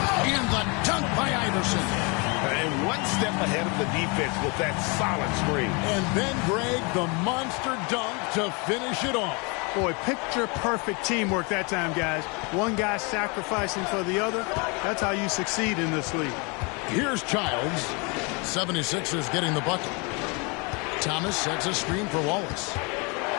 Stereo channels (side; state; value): right; quieter; 30.9 dB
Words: the dunk by Iverson. And one step ahead of the defense with that solid screen. And then, Greg, the monster dunk to finish it off. Boy, picture-perfect teamwork that time, guys. One guy sacrificing for the other. That's how you succeed in this league. Here's Childs. 76ers getting the bucket. Thomas sets a screen for Wallace.